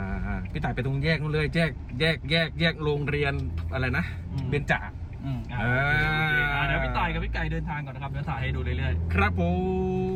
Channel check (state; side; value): identical; both; correlation 1.00